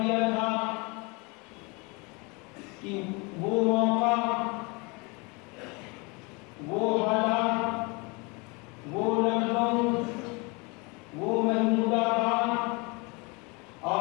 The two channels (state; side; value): quieter; right; 28.8 dB